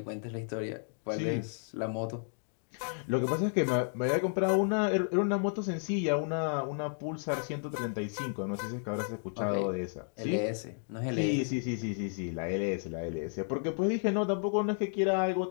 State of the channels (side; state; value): right; silent; 56 dB below the other